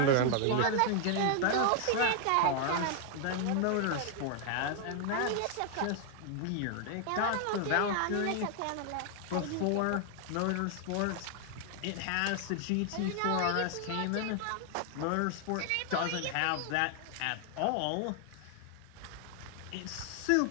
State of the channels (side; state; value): both; different; correlation 0.00